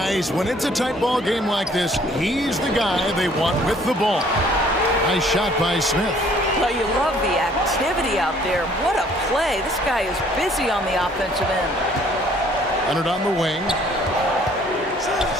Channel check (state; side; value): normal; both; correlation 0.59